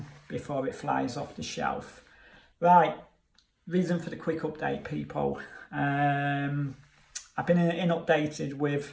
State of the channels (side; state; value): both; identical; correlation 1.00